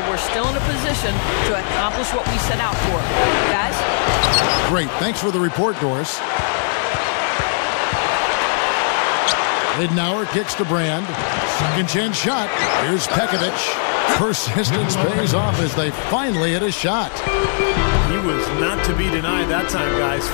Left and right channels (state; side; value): silent; right; digital silence